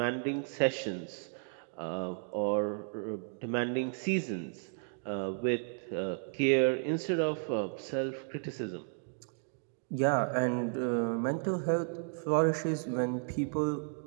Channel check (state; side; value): silent; left; 55 dB below the other